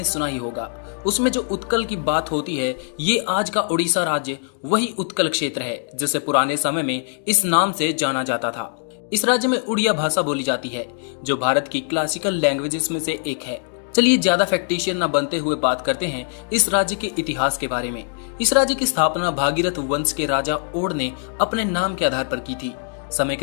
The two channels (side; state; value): right; silent; 60 dB below the other